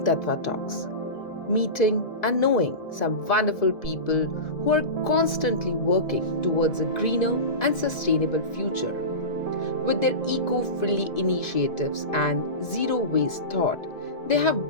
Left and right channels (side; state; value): right; late; 1.7 ms